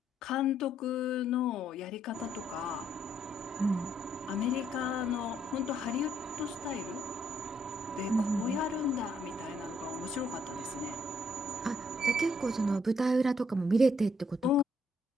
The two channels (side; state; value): both; normal; correlation 0.71